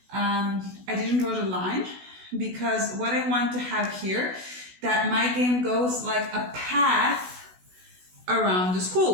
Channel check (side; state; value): left; late; 16 ms